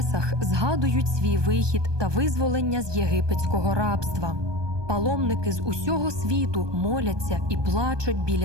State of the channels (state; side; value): late; left; 1.2 ms